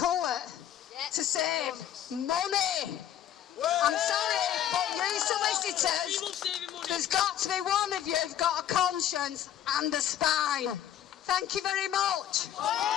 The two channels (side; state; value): right; quieter; 10.9 dB